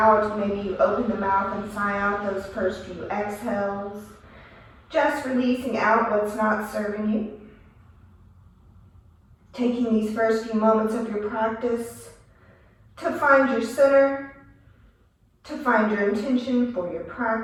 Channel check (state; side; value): identical; both; correlation 1.00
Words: Maybe you open the mouth and sigh out those first few exhales. Just releasing out what's not serving you. Taking these first few moments of your practice to find your center, to find your intention for your